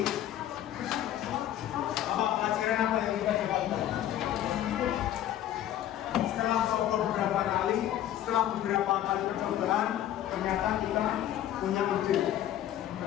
Apa pelajaran apa yang kita dapatkan? Setelah coba beberapa kali, setelah beberapa kali percobaan, ternyata kita punya ide,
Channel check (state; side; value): quieter; right; 12.0 dB